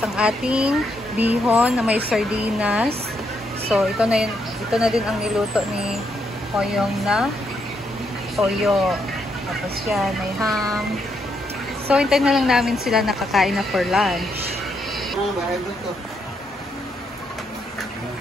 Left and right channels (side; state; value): both; normal; correlation 0.77